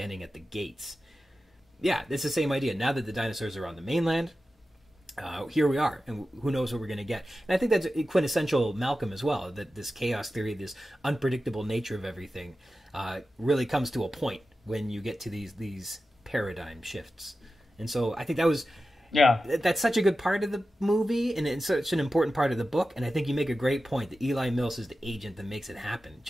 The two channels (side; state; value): both; normal; correlation 0.93